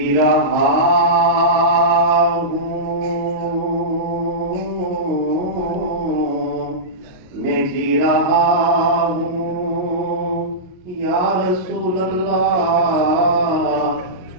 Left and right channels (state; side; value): late; left; 22 ms